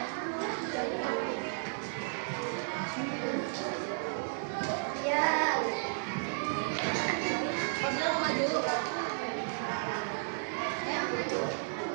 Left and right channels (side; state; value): left; silent; digital silence